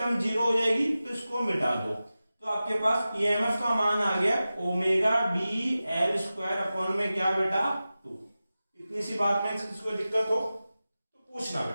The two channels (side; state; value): both; inverted; correlation -0.95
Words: 0 हो जाएगी, तो इसको मिटा दो। तो आपके पास EMF का मान आ गया omega B L square upon में क्या बेटा, 2। इतनी सी बात में किसको दिक्कत हो तो पूछना